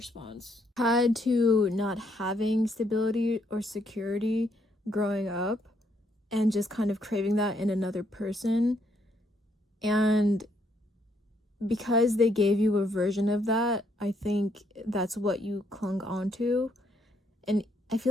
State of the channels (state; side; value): normal; both; correlation 0.72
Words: tied to not having stability or security growing up and just kind of craving that in another person. And because they gave you a version of that, I think that's what you clung on to. And I